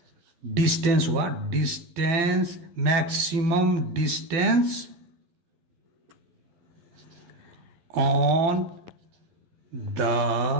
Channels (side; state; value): left; late; 12 ms